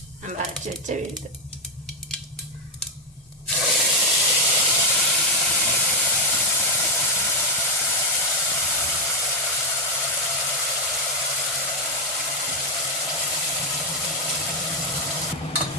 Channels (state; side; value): normal; both; correlation 0.03